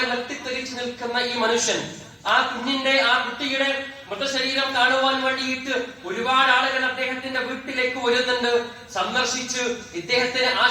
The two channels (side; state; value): both; identical; correlation 1.00